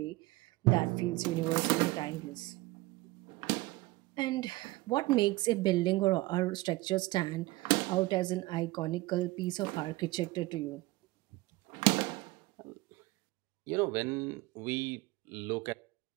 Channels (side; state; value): left; quieter; 20.5 dB